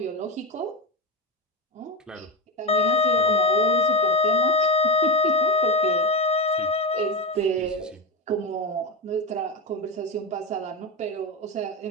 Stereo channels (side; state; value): both; normal; correlation 0.13